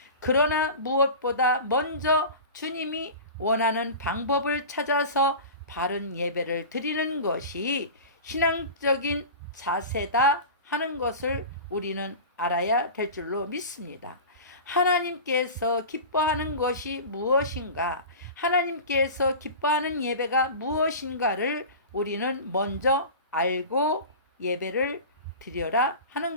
그러나 무엇보다 먼저 주님이 원하는 방법을 찾아서 바른 예배를 드리는 것이 신앙적인 자세다 하는 것을 우리는 알아야 될 줄로 믿습니다. 하나님께서 기뻐하는 것이 무엇인가? 하나님께서 기뻐하는 예배가 무엇인가를 우리는 먼저 알고 예배를 드려라 하는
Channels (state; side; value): inverted; both; correlation -0.33